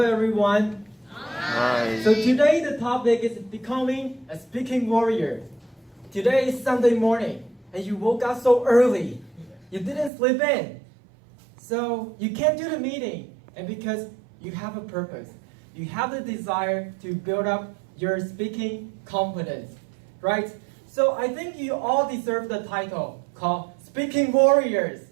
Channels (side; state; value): left; drops out; at 10.1 s